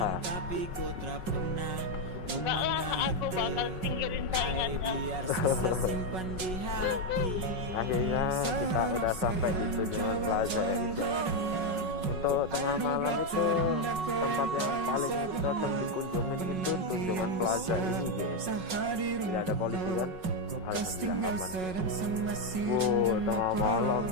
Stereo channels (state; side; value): late; left; 5.4 ms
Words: Enggak lah, aku bakal singkirin saingannya. Akhirnya kita udah sampai di Tunjungan Plaza ya guys. Untuk tengah malam itu tempat yang paling cocok dikunjungin itu Tunjungan Plaza ini guys. Tidak ada polisi kan? Bekas Alhamdulillah tinggal aman. sedang sama si Tengah malam